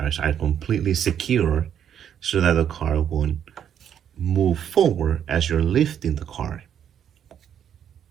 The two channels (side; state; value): left; quieter; 9.1 dB